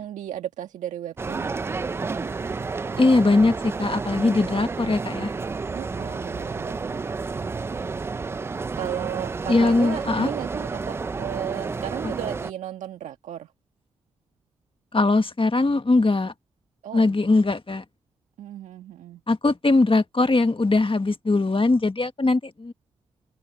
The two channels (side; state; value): both; normal; correlation 0.83